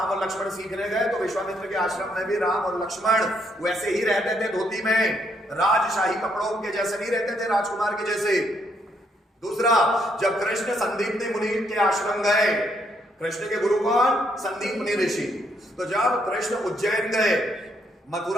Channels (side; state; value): both; normal; correlation 0.73